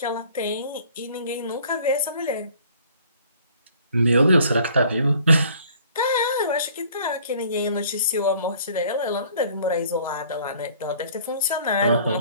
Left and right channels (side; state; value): both; inverted; correlation -0.55